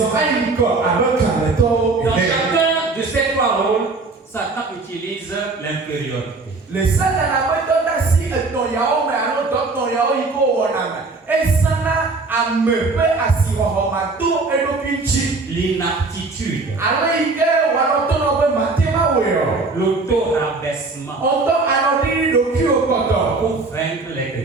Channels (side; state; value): left; quieter; 3.7 dB